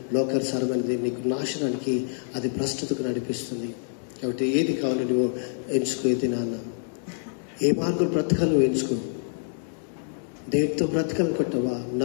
లోకానుసారమైనది నీకు నాశనానికి, అది భ్రష్టతకు నడిపిస్తుంది. కాబట్టి ఏది కావాలి నువ్వు ఎంచుకో. ఇది నాన్న ఏ మార్గం బ్రతకాలి నువ్వు ఎంచుకో. దేవుడితో బ్రతకాలనుకుంటున్నావా?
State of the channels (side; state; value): right; silent; digital silence